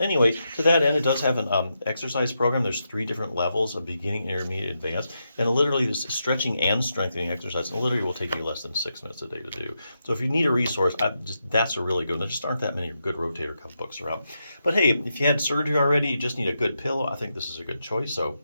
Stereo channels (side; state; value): both; inverted; correlation -0.85